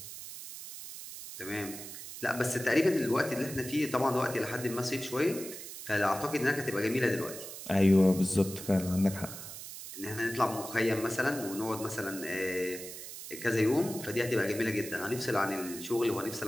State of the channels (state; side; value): noise; right; hiss, 11 dB below the sound